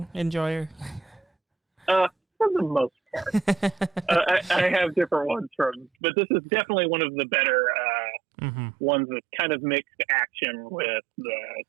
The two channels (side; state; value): left; drops out; at 5.9 s